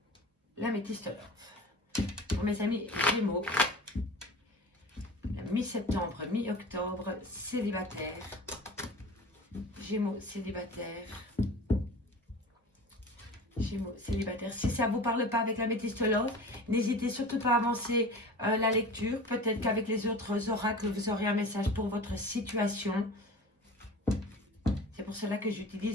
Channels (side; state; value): both; normal; correlation 0.37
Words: l'améthyste love. Pour mes amis Gémeaux, mi-septembre, mi-octobre, célibataire. Gémeaux célibataire. Gémeaux célibataire. Si ça ne vous parle pas avec l'améthyste love, n'hésitez surtout pas à avancer la lecture. Peut-être qu'avec les autres oracles, vous aurez un message pour votre situation. C'est pour cela que